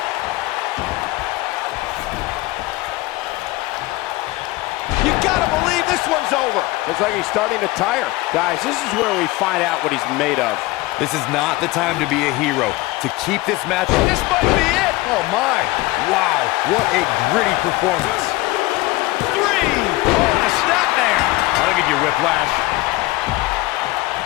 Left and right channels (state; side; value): quieter; right; 20.2 dB